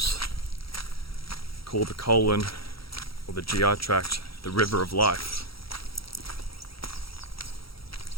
call the colon or the GI tract the river of life.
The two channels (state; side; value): late; right; 0.75 ms